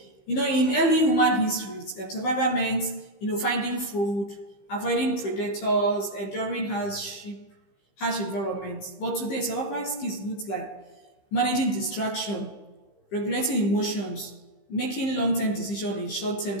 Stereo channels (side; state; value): right; late; 15 ms